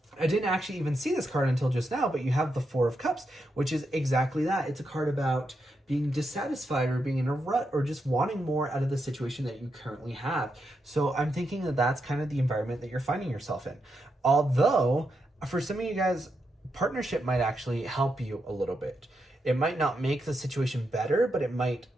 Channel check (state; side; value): normal; both; correlation 0.84